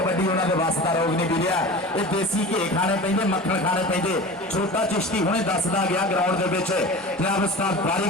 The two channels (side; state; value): both; normal; correlation 0.34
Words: उन्होंने वास्ता रोग नहीं मिलिया ये देसी घे खाने पेंदे मक्खन खाने पेंदे छोटा चिश्ती हुणे दसदा गया ग्राउंड दे विच जनाब उस्ताद बारी